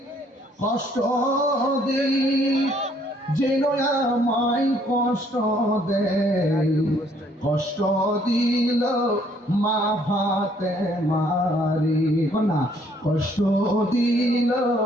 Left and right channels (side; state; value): both; normal; correlation 0.64